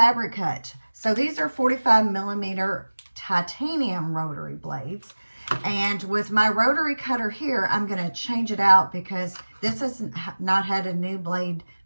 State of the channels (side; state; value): both; inverted; correlation -1.00